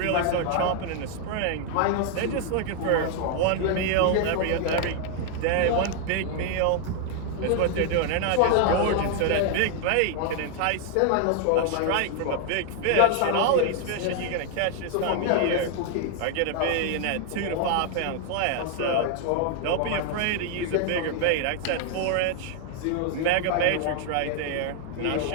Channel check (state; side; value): different; both; correlation 0.00